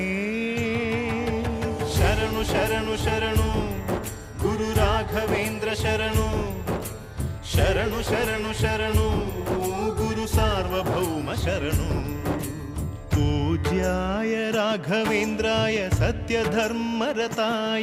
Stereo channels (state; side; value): identical; both; correlation 1.00